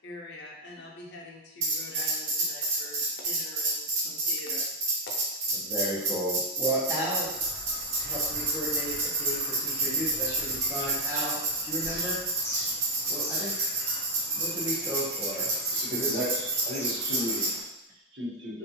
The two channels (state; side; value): normal; both; correlation 0.01